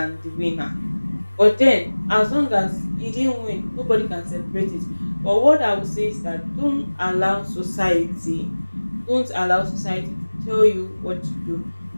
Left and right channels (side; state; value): both; inverted; correlation -1.00